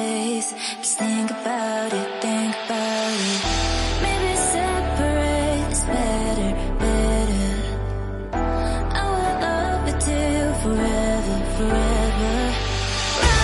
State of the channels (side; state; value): both; identical; correlation 1.00